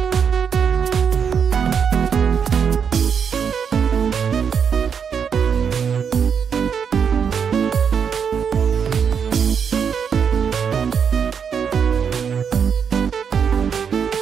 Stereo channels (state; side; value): quieter; left; 7.0 dB